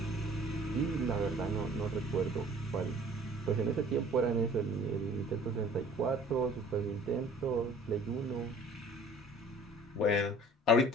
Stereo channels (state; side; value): normal; both; correlation 0.51